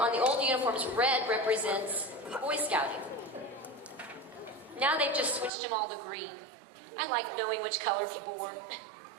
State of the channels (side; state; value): left; drops out; at 5.5 s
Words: the old uniforms, red represents Boy Scouting. Now they've just switched them all to green. I like knowing which color people wore.